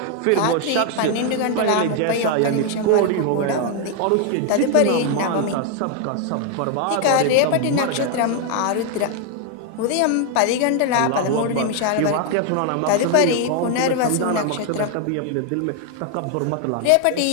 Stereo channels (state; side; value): different; both; correlation 0.00